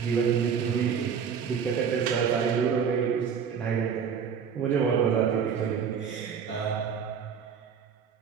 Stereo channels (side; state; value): left; quieter; 7.0 dB